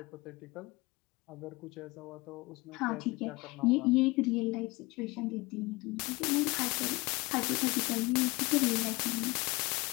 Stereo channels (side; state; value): right; quieter; 23.5 dB